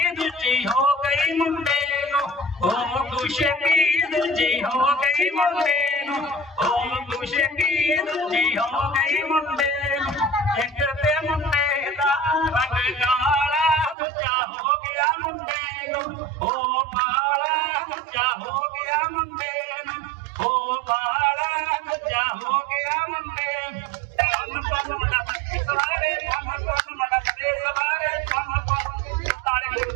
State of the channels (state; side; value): drops out; left; at 14.0 s